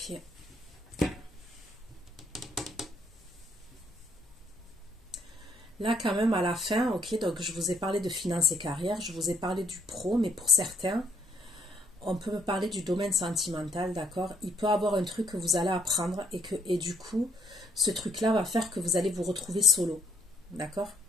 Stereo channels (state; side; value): normal; both; correlation 0.68